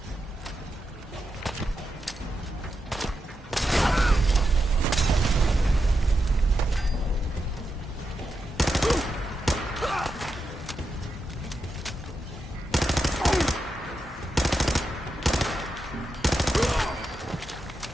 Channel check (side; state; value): both; normal; correlation 0.87